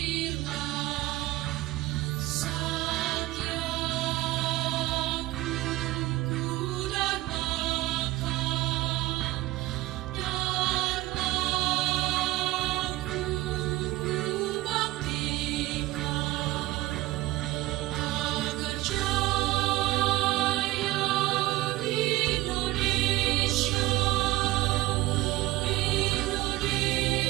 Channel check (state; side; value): quieter; left; 17.8 dB